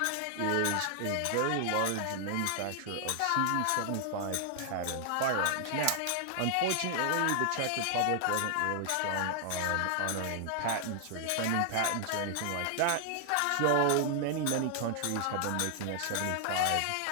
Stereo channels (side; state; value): both; different; correlation 0.00